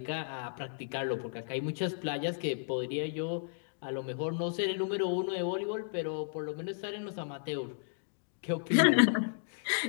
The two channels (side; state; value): right; silent; digital silence